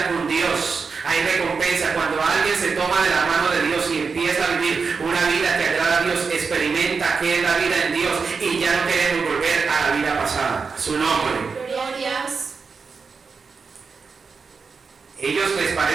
con Dios. Hay recompensa cuando alguien se toma de la mano de Dios y empieza a vivir una vida que agrada a Dios, experimenta qué es la vida en Dios y ya no queremos volver a la vida pasada. Su nombre. Glorias. Ellos les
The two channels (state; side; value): quieter; left; 5.1 dB